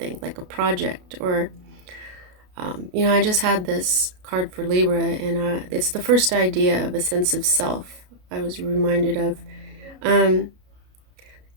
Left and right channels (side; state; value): left; late; 33 ms